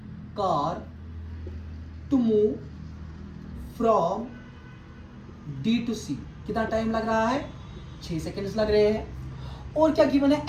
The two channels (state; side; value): identical; both; correlation 1.00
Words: car to move from D to C. कितना टाइम लग रहा है? 6 सेकेंड्स लग रहे हैं। और क्या गिवन है?